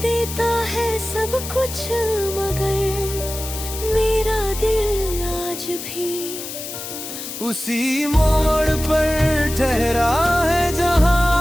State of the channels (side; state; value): left; noise; hiss, 8 dB below the sound